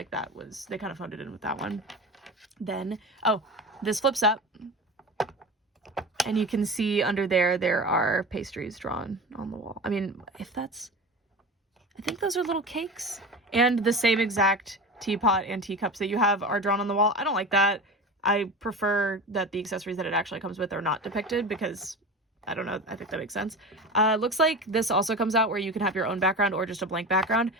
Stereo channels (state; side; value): normal; both; correlation 0.30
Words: that was, they kind of phoned it in with that one. Then, oh, this flips up. And you can see under there are pastries drawn on the wall. I mean, I think those are little cakes. And the same exact teapot and teacups that you have are drawn on the wall. I don't like that. I prefer that the accessories that it actually comes with are not depicted because, I don't know, I think that makes sense. Looks like this also comes out where you can have your own background or just a blank background.